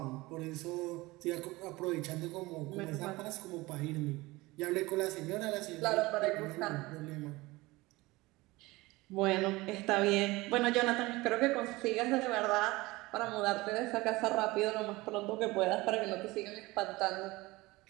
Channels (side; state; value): left; quieter; 21.1 dB